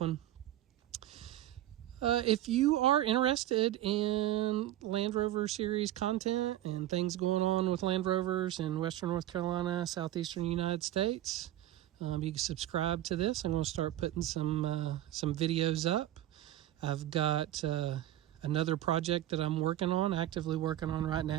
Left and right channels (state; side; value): quieter; left; 13.8 dB